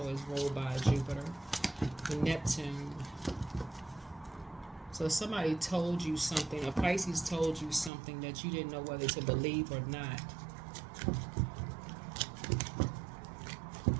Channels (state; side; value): drops out; left; at 7.9 s